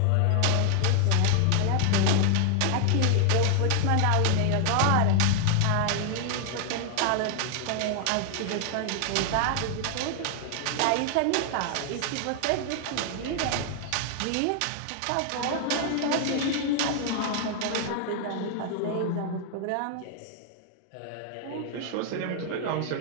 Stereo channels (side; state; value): both; different; correlation 0.00